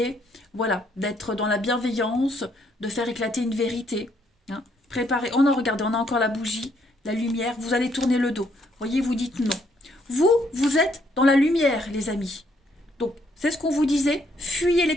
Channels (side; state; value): both; normal; correlation 0.70